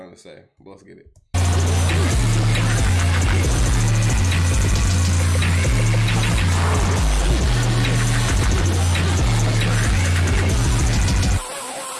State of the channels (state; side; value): identical; both; correlation 1.00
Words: to say. But let's get it.